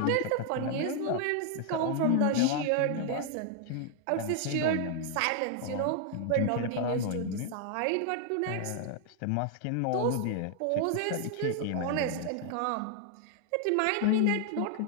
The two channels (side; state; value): both; different; correlation 0.00